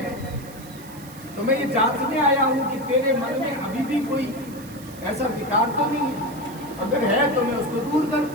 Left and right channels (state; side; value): noise; right; hiss, 19 dB below the sound